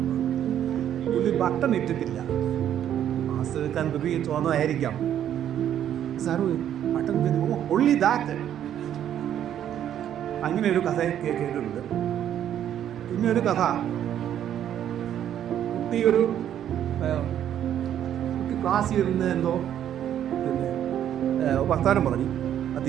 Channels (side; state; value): left; quieter; 10.4 dB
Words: ഒരു ബട്ടൺ ഇട്ടിട്ടില്ല. മാസ്റ്റർ എടുക്കാൻ ഉപയോഗിച്ച് വന്നതായിരിക്കാം. Sir button only that. അങ്ങനെ ഒരു കഥ കേട്ടിട്ടുണ്ട്. പിന്നെ ഒരു കഥ, കുട്ടി ക്ലാസ്സിൽ ഇരുന്ന് എന്തോ പിന്നെ വർത്താനം പറഞ്ഞു.